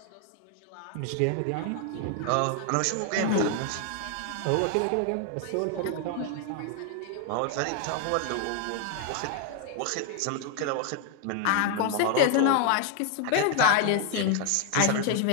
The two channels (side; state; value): both; different; correlation 0.00